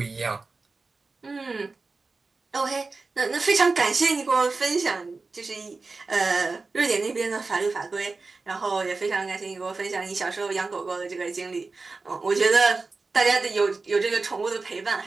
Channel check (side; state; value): left; quieter; 3.9 dB